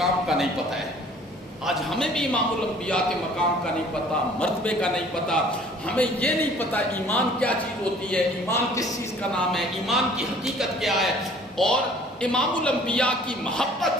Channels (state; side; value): normal; both; correlation 0.53